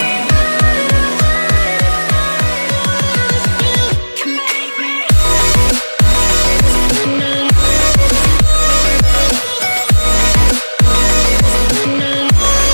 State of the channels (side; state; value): both; inverted; correlation -1.00